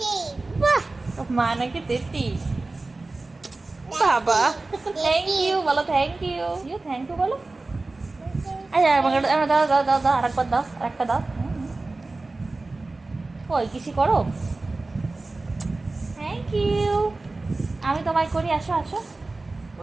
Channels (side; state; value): left; quieter; 3.3 dB